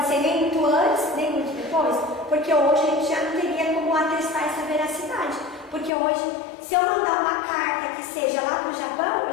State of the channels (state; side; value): drops out; right; at 5.9 s